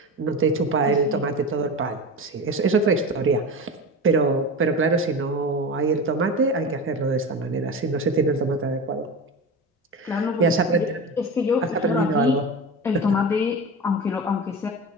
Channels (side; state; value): both; normal; correlation 0.27